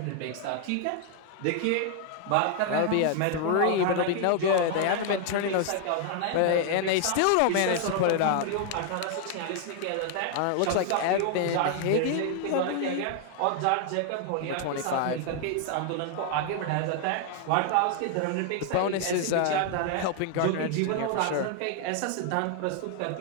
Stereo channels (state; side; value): different; both; correlation 0.00